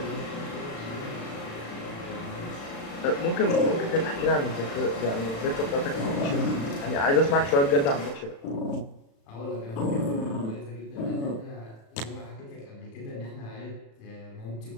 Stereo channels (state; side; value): late; right; 36 ms